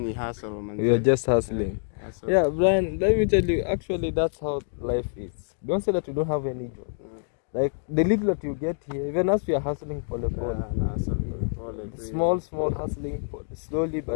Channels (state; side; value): silent; right; digital silence